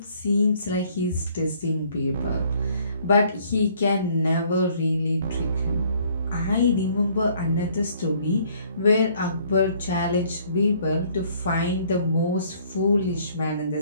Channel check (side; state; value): both; inverted; correlation -0.61